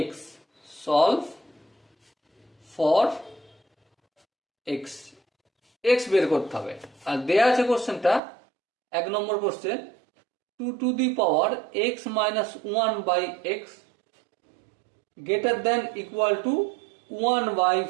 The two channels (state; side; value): drops out; left; at 8.2 s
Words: X, solve for X, X বের করতে হবে। আর দেয়া আছে কোশ্চেনটা 1 নম্বর question 2 to the power x minus 1/x greater than equal to